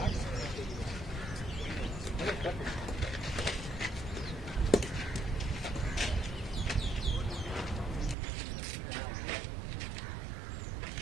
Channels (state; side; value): drops out; left; at 8.2 s